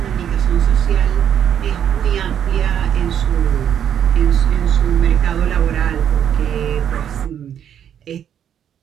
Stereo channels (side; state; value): left; quieter; 9.2 dB